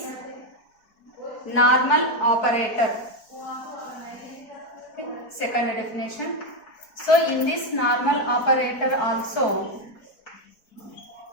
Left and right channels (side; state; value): right; late; 4.4 ms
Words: normal operator. Okay. Second definition. So in this normal operator also